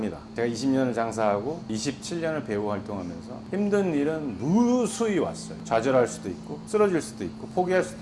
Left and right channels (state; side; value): identical; both; correlation 1.00